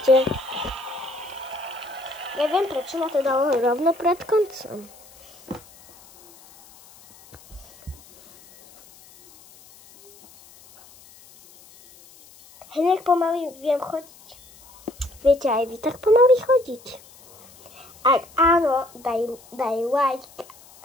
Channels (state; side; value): noise; left; hiss, 24 dB below the sound